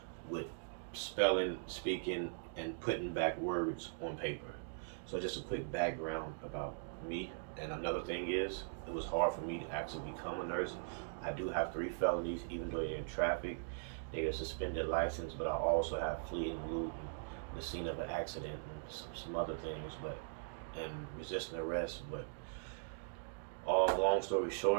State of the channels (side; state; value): left; silent; digital silence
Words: with spelling, speaking, and putting back words on paper. So just a quick background about me. And another thing is, it was hard for me to actually become a nurse. I do have 3 felonies, even though they're in traffic. They get a suspended license, but I also have fleeing loot and the scene of an accident and some other things, but and resisting arrest. But all long story